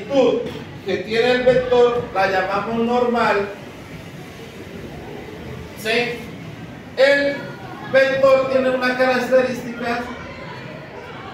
que tiene el vector la llamamos normal, ¿sí? El vector tiene una característica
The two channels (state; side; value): identical; both; correlation 1.00